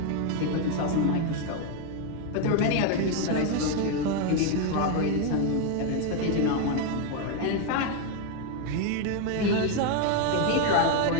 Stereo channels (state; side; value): different; both; correlation 0.01